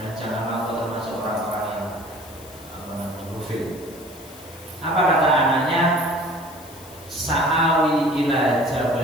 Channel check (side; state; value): left; noise; hiss, 20 dB below the sound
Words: janganlah kau termasuk orang-orang yang ghafil. Apa kata anaknya? Sa'awi ila